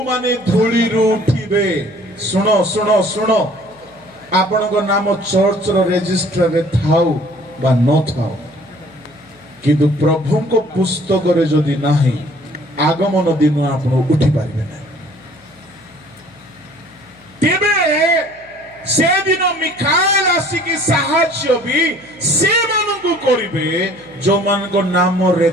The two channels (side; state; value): left; noise; hum, 28 dB below the sound